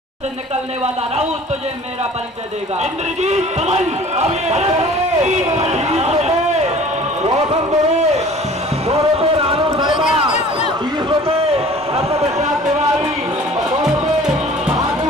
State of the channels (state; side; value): normal; both; correlation 0.47